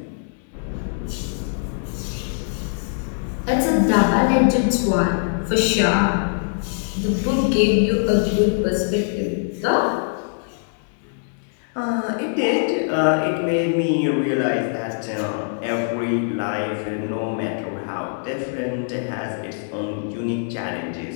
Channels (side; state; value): right; silent; digital silence